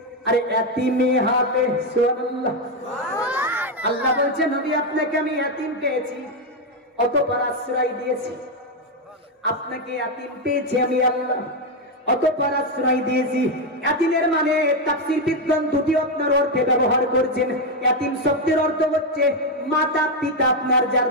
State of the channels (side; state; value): both; normal; correlation 0.05